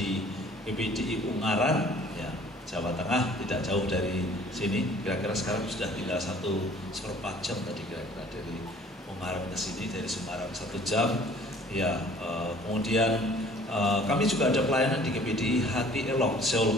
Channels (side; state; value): both; normal; correlation 0.53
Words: PPDI Ungaran, ya, Jawa Tengah, tidak jauh dari sini. Kira-kira sekarang sudah tinggal 1,4 jam tadi kira-kira dari Ungaran ke sini, dari Semarang 1 jam. Ya, kemudian kami juga ada pelayanan di PPDI Hati Elok,